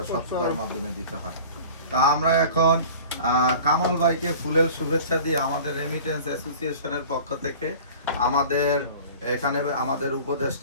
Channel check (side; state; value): both; inverted; correlation -0.42